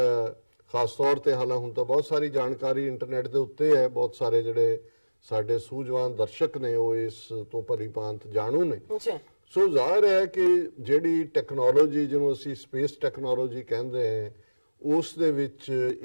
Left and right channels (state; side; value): inverted; both; correlation -1.00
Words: ਖਾਸ ਤੌਰ ਤੇ ਹਾਲਾਂ ਹੁਣ ਤਾਂ ਬਹੁਤ ਸਾਰੀ ਜਾਣਕਾਰੀ ਇੰਟਰਨੈਟ ਦੇ ਉੱਤੇ ਹੈ, ਬਹੁਤ ਸਾਰੇ ਜਿਹੜੇ ਸਾਡੇ ਸੂਝਵਾਨ ਦਰਸ਼ਕ ਨੇ ਉਹ ਇਸ ਤੋਂ ਭਲੀਭਾਂਤ ਜਾਣੂ ਨੇ। ਸੋ ਜ਼ਾਹਿਰ ਹੈ ਕਿ ਜਿਹੜੀ ਟੈਕਨੋਲੋਜੀ ਜਿਹਨੂੰ ਅਸੀਂ ਸਪੇਸ ਟੈਕਨੋਲੋਜੀ ਕਹਿੰਦੇ ਹਾਂ ਉਸ ਦੇ ਵਿੱਚ